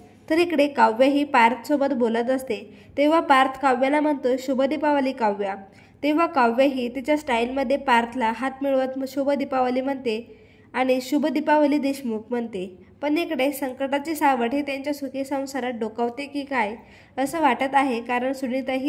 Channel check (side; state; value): both; identical; correlation 1.00